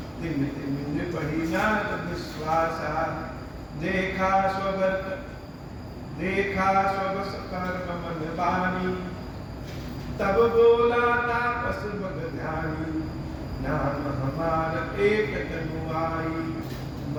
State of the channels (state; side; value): identical; both; correlation 1.00